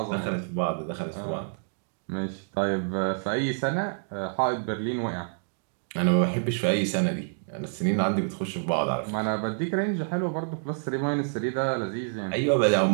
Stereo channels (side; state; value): left; silent; digital silence